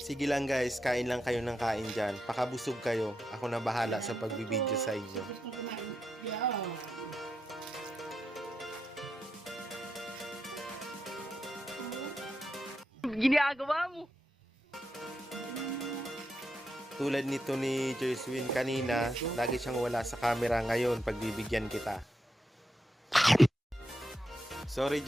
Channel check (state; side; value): normal; both; correlation 0.85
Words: lang guys, kain lang kayo ng kain dyan. Pakabusog kayo. Ako na bahala sa pagbibideo sa inyo. Gusto kong kumain. Yeah. Tulad nito ni Jerswin kanina, lagi siyang wala sa camera ngayon. Pagbibigyan kita. Sorry